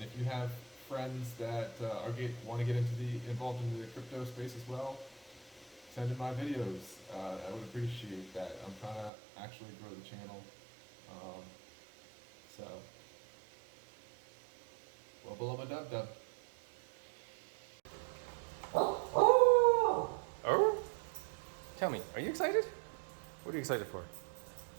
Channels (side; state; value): left; drops out; at 9.1 s